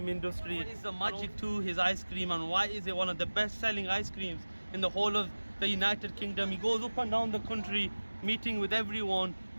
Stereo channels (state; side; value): inverted; both; correlation -1.00